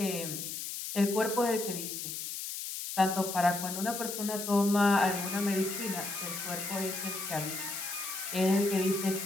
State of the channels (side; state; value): left; noise; hiss, 6 dB below the sound